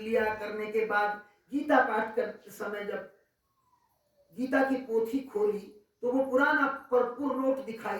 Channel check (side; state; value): both; identical; correlation 1.00